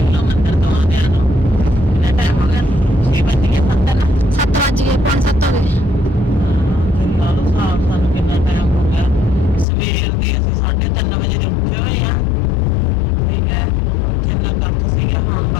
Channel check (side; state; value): right; drops out; at 9.7 s